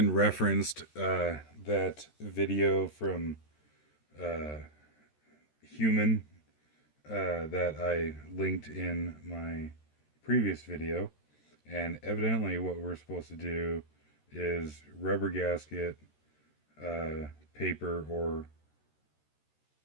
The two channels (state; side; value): late; right; 13 ms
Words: referenced that video from uh, Human that I linked in my previous video, and evidently what we're supposed to do is rubber gasket, paper, or